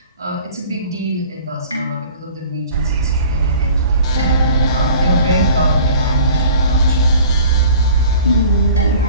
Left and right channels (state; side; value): inverted; both; correlation -0.46